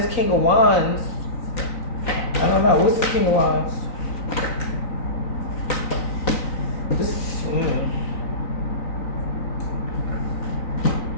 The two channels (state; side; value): late; right; 3.9 ms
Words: King of Wands, I don't know, what's the King of Wands?